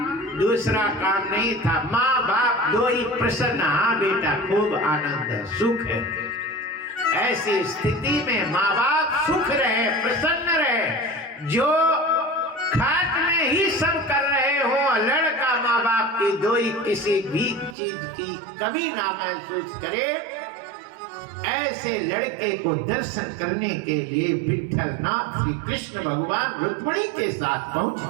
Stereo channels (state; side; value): drops out; left; at 17.8 s